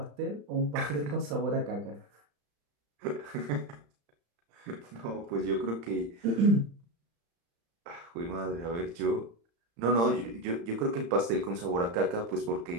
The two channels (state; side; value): late; left; 35 ms